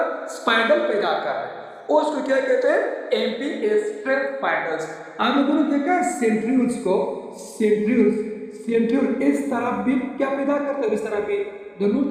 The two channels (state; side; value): identical; both; correlation 1.00